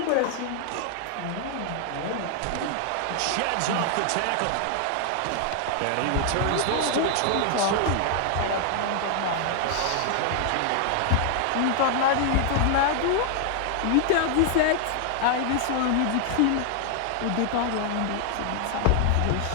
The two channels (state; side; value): different; both; correlation 0.00